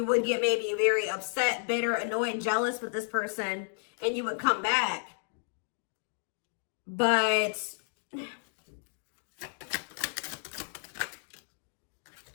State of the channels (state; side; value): silent; right; digital silence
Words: would get maybe very upset, bitter, annoyed, jealous with this person, and you would come back. But